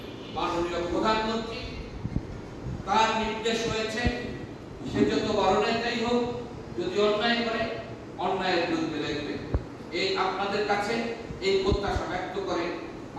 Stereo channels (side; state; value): both; identical; correlation 1.00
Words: মাননীয় প্রধানমন্ত্রী তার নির্দেশ হয়েছে, সে যত বড় নেতাই হোক, যদি অন্যায় করে অন্যায়ের বিরুদ্ধে লড়বে। এই আপনাদের কাছে এই প্রত্যাশা ব্যক্ত করে